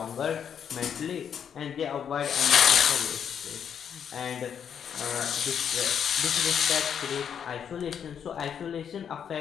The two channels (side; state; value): right; quieter; 8.1 dB